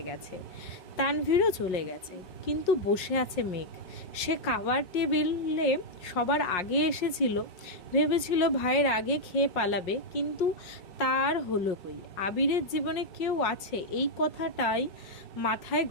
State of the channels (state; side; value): late; right; 5.5 ms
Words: গেছে। তানভীরও চলে গেছে, কিন্তু বসে আছে মেঘ। সে খাবার টেবিলে সবার আগে এসেছিল, ভেবেছিল ভাইয়ের আগে খেয়ে পালাবে, কিন্তু তার হলো কই। আবিরের জীবনে কেউ আছে, এই কথাটাই মাথায়